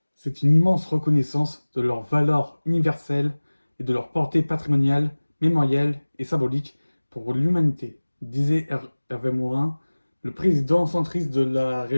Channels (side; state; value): both; inverted; correlation -1.00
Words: c'est une immense reconnaissance de leur valeur universelle et de leur portée patrimoniale, mémorielle et symbolique pour l'humanité, disait Hervé Morin, le président centriste de la